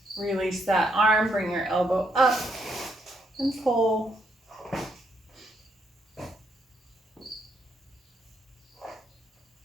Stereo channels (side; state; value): both; normal; correlation 0.75